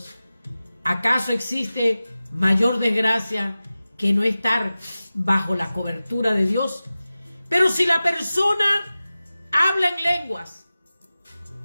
¿Acaso existe mayor desgracia que no estar bajo la cobertura de Dios? Pero si la persona habla en lenguas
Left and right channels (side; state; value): both; inverted; correlation -0.96